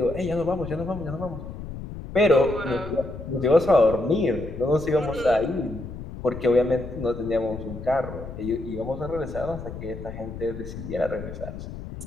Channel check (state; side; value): noise; left; rumble, 10 dB below the sound